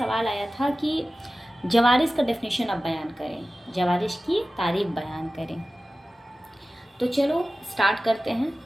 आया था कि जवारिश का डेफिनेशन आप बयान करें, जवारिश की तारीफ बयान करें। तो चलो स्टार्ट करते हैं।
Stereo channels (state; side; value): normal; both; correlation 0.96